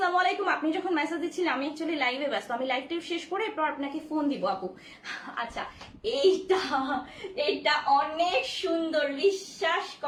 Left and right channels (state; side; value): identical; both; correlation 1.00